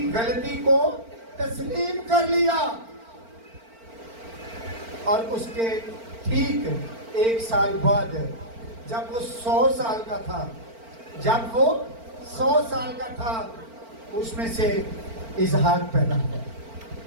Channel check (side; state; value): left; late; 4.4 ms